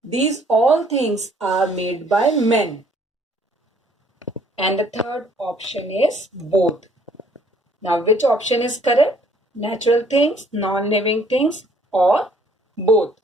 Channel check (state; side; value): normal; both; correlation 0.61